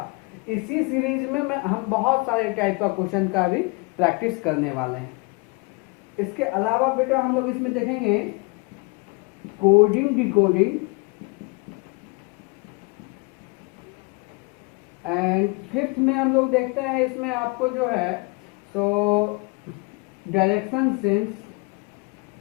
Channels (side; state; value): right; quieter; 28.5 dB